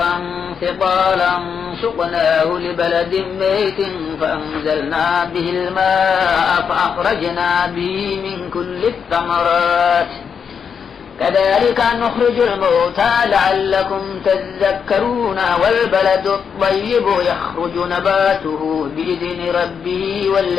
ثقالا سقناه لبلد ميت فأنزلنا به الماء فأخرجنا به من كل الثمرات كذلك نخرج الموتى لعلكم تذكرون والبلد الطيب يخرج نباته بإذن ربه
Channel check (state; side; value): quieter; right; 6.8 dB